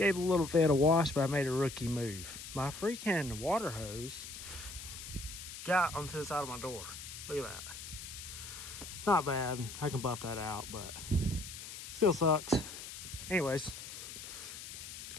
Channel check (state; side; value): noise; left; hiss, 10 dB below the sound